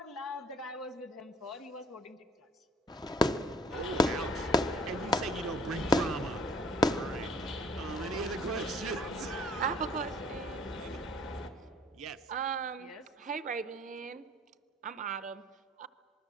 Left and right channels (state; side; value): normal; both; correlation 0.58